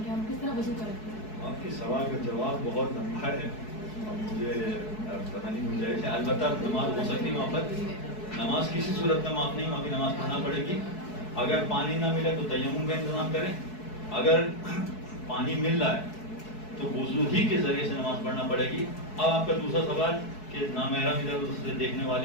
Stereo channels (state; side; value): late; right; 4.7 ms